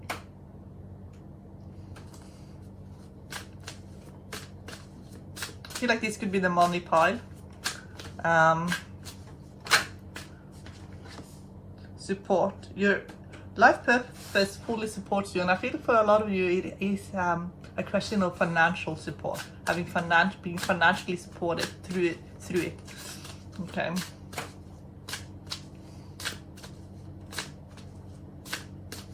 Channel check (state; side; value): identical; both; correlation 1.00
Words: I feel like this could be the money pile. Support. Your life purpose fully supports you, and I feel for a lot of you it is a question of financial support, being financially supported through it. Okay.